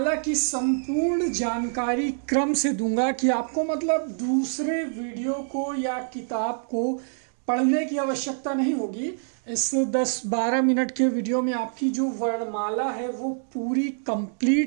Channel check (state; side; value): silent; left; digital silence